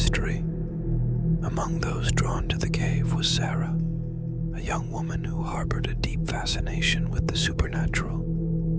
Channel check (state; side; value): identical; both; correlation 1.00